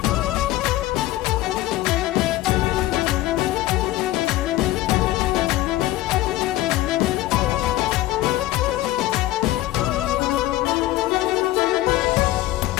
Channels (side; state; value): right; quieter; 16.1 dB